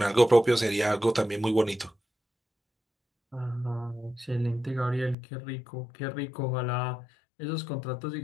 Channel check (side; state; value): right; drops out; at 5.2 s